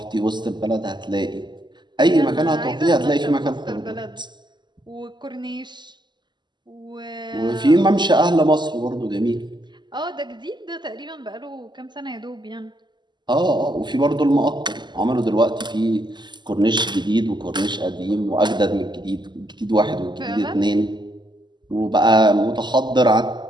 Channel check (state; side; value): late; left; 0.21 ms